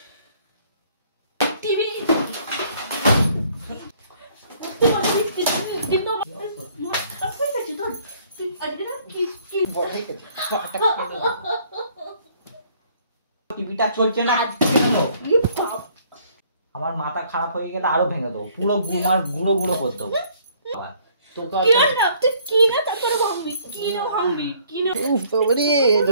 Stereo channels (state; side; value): inverted; both; correlation -0.61